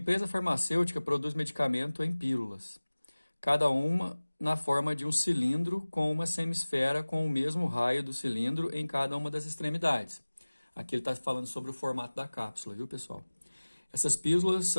farmacêutica produz medicamento em pílulas, cada uma na forma de um cilindro com uma semisfera com o mesmo raio do cilindro em cada uma das extremidades. Aqui ele está falando sobre o formato da cápsula, viu, pessoal? Essas pílulas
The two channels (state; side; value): inverted; both; correlation -1.00